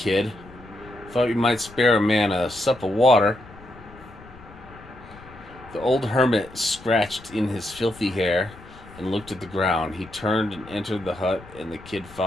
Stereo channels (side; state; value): left; noise; rumble, 20 dB below the sound